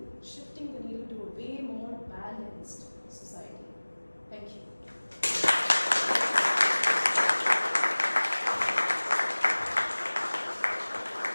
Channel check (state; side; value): inverted; both; correlation -1.00